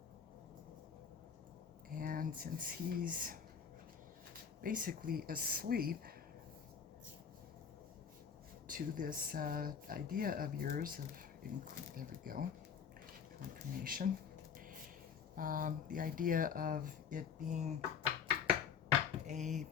And since he's basically asleep to this idea of yours of, there we go, confirmation. The idea of it being a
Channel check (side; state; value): right; quieter; 7.0 dB